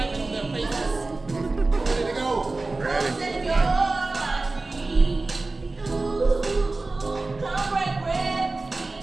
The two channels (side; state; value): left; quieter; 3.3 dB